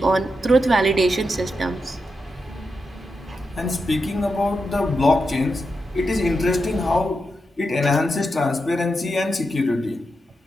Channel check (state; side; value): normal; both; correlation 0.87